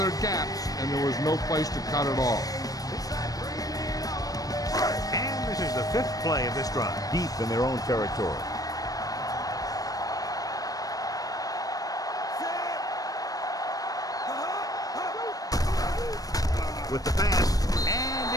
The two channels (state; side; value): late; right; 0.18 ms